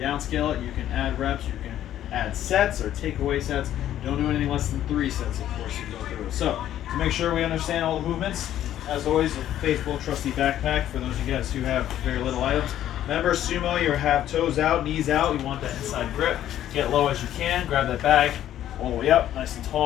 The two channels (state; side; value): quieter; right; 11.9 dB